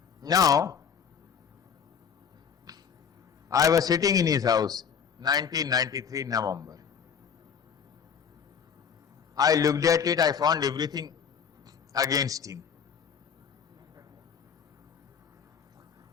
Now, I was sitting in his house, 1993 November. I looked at it, I found everything against him.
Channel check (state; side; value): quieter; right; 7.2 dB